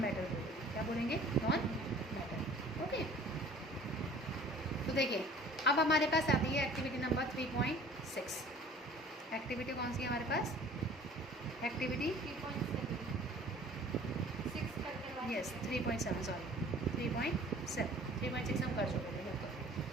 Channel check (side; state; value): both; normal; correlation 0.49